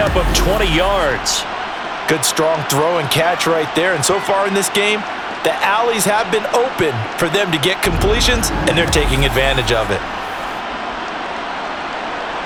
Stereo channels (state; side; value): identical; both; correlation 1.00